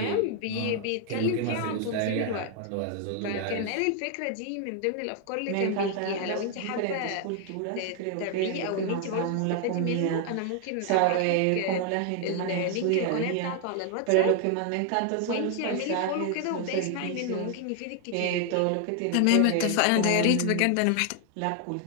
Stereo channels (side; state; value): both; different; correlation 0.00